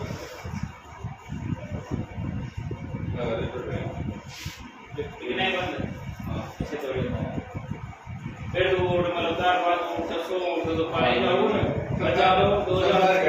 लगा दे तो बेन कितने बंद हाँ ऐसे थोड़ी होता है। फिर तो वोट मलदार बात 600 तो पाई जाओ ना, बचा लो 2000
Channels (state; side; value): identical; both; correlation 1.00